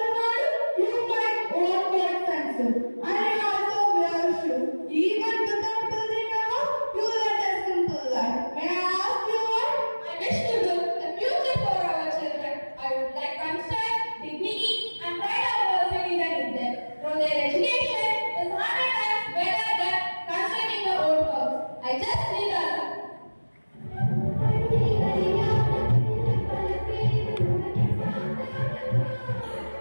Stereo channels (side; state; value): both; inverted; correlation -1.00